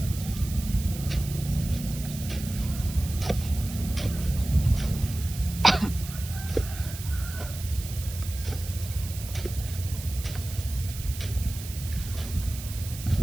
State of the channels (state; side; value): noise; right; hiss, 12 dB below the sound